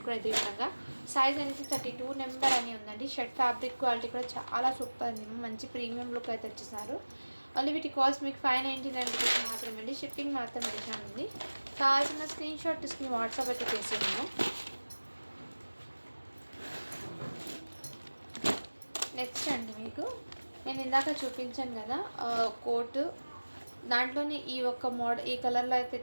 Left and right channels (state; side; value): inverted; both; correlation -1.00